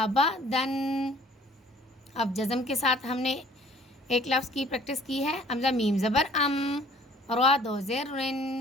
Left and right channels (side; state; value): both; normal; correlation 0.55